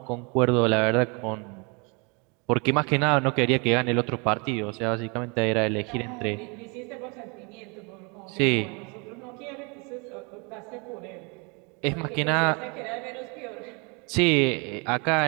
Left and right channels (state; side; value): quieter; left; 31.5 dB